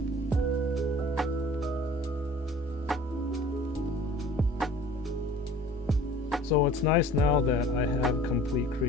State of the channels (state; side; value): normal; both; correlation 0.47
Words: So it's nice now that I have complete